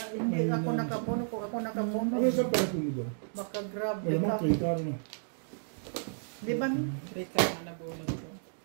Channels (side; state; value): left; silent; digital silence